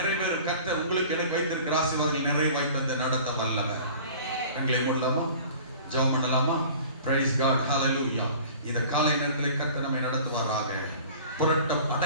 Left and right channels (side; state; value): both; inverted; correlation -0.44